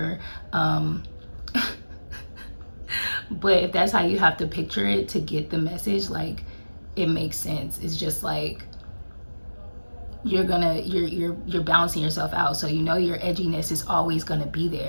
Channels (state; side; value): inverted; both; correlation -1.00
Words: But if that's how you have to picture it to get the message, like it makes sense. It's just like you're balancing yourself out, so you know your edginess is always gonna be